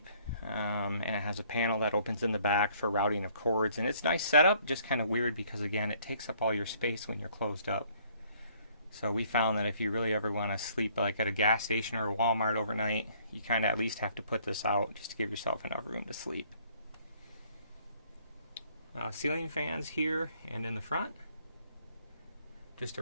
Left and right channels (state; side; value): inverted; both; correlation -0.62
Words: and it has a panel that opens in the back for routing of cords, and it's a nice setup. Just kind of weird because again, it takes up all your space when you're closed up. So we found that if you really ever want to sleep like at a gas station or a Walmart overnight, you kind of at least have to put this out just to give yourself enough room to sleep. Ceiling fans here and in the front. Just a